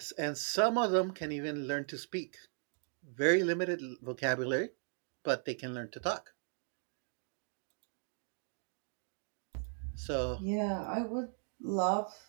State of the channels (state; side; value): silent; left; 53 dB below the other